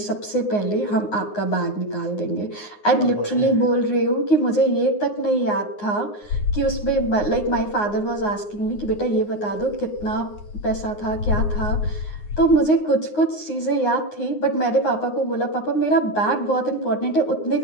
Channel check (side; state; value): right; late; 9.6 ms